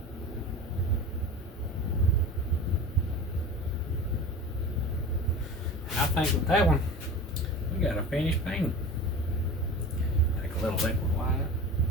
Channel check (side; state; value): both; normal; correlation 0.33